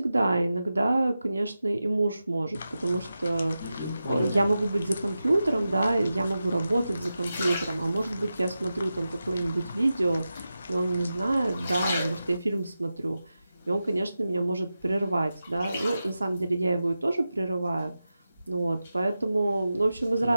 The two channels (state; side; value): inverted; both; correlation -0.92